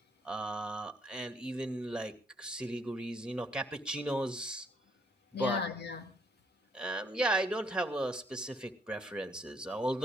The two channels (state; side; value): normal; both; correlation 0.69